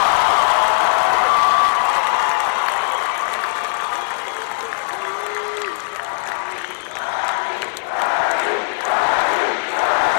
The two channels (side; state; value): right; silent; digital silence